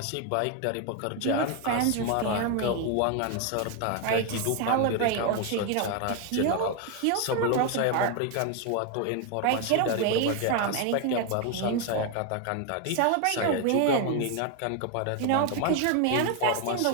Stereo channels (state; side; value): different; both; correlation 0.01